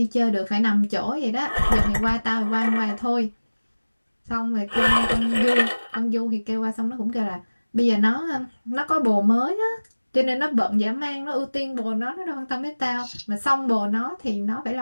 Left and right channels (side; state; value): both; inverted; correlation -1.00